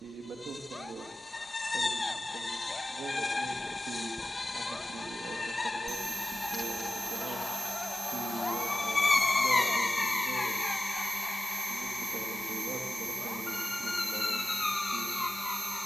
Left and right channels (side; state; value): both; normal; correlation 0.95